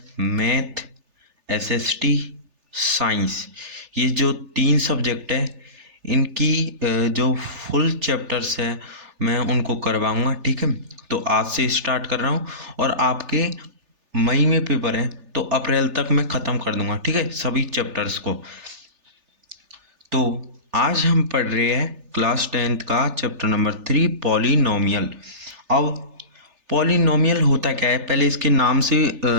math, SST, science, ये जो 3 सब्जेक्ट है इनकी जो फुल चैप्टर्स है मैं उनको करवाऊँगा। ठीक है, तो आज से स्टार्ट कर रहा हूँ और आपके मई में पेपर है तो अप्रैल तक मैं ख़त्म कर दूँगा। ठीक है, सभी चैप्टर्स को। तो आज हम पढ़ रहे हैं क्लास 10th का चैप्टर नंबर 3 पॉलिनोमियल। अब पॉलिनोमियल होता क्या है, पहले इसके नाम से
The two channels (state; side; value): late; left; 3.4 ms